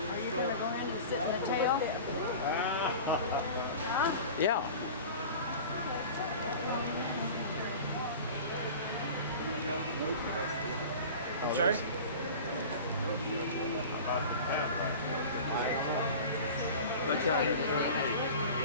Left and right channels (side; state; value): both; inverted; correlation -0.37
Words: you going to go in and sit in the tail? Yeah. I'm sorry? Let's try it.